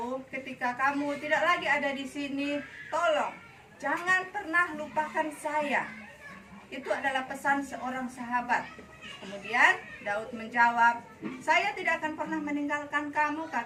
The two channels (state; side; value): identical; both; correlation 1.00